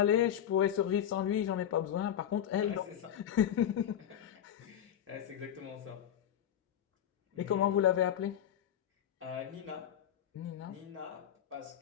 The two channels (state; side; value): quieter; right; 10.1 dB